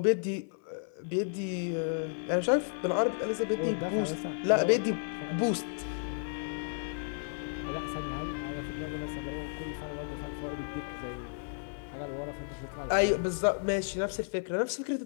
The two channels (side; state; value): right; silent; 56 dB below the other